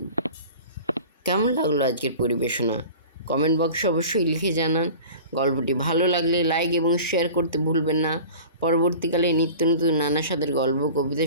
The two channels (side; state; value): both; inverted; correlation -0.40